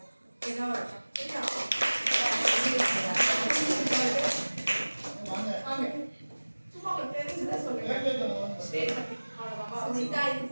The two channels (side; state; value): both; inverted; correlation -1.00